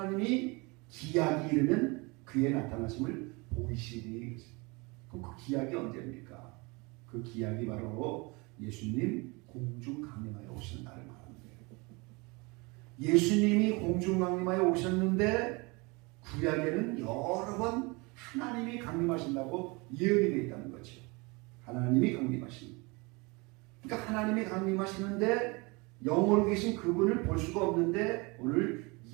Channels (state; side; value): quieter; left; 27.1 dB